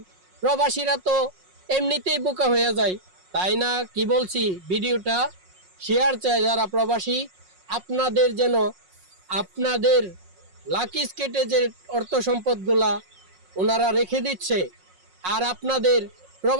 প্রবাসীরা তো এমনিতেই বোকা হয়ে যায়, তাই না? কি বলছি, ভিডিওটা শেয়ার চাই যারা প্রবাসী, আপনাদের যেন আপনাদের লাকি স্কেটে যে অর্থ সম্পদগুলা ওনারা রেখে দিচ্ছে, আর আপনাদের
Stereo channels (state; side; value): late; left; 5.5 ms